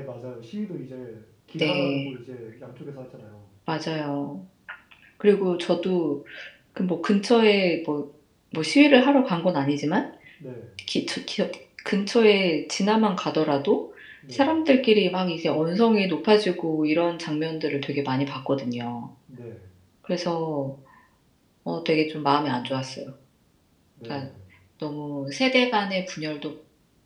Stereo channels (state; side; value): identical; both; correlation 1.00